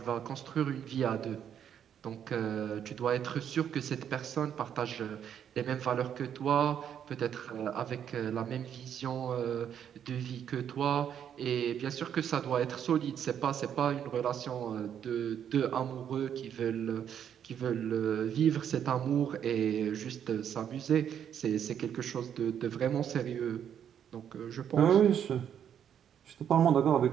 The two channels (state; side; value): quieter; left; 9.0 dB